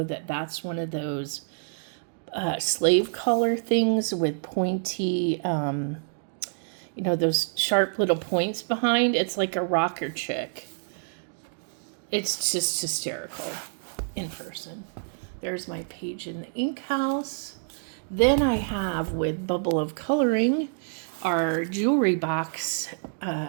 that that's one of those slave collar things with pointy, those sharp little points behind. It's like a rocker chick. It's just hysterical in person. There's my page in the ink house. Then I have with Bubble of Coloring our jewelry box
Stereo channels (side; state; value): left; silent; digital silence